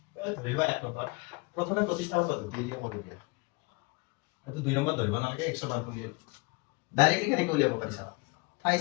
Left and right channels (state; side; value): quieter; right; 26.6 dB